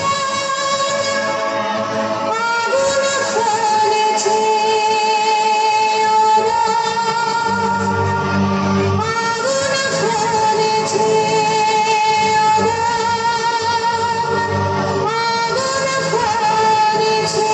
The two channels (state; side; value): identical; both; correlation 1.00